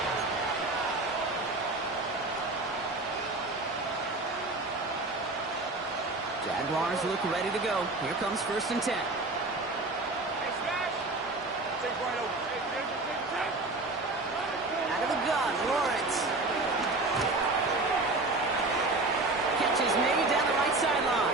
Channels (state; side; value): quieter; left; 3.1 dB